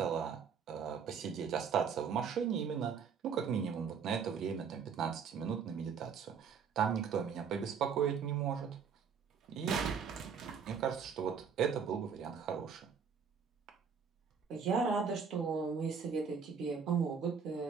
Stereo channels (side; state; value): left; quieter; 6.4 dB